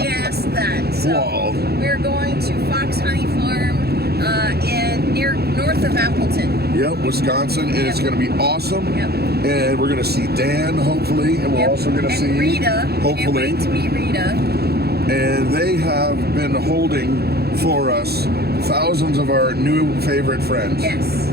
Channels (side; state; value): left; late; 0.46 ms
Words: that. So Wow. we're going to Fox Honey Farm near north of Appleton. Yep, Wisconsin, and it's going to be awesome. Yep. And we're going to see Dan, hopefully, and we're Yep. also going to and see Rita. hopefully. Can't wait to meet Rita. And they have been holding for us thousands of our new favorite friends. Yes,